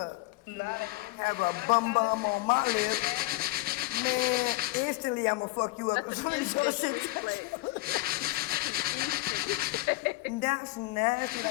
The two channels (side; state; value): right; quieter; 20.1 dB